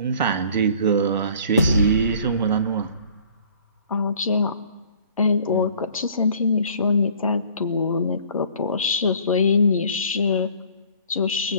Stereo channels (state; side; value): inverted; both; correlation -0.53